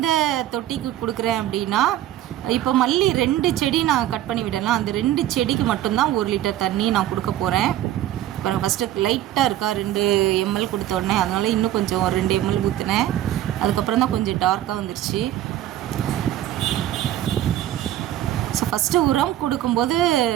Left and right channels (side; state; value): left; quieter; 12.8 dB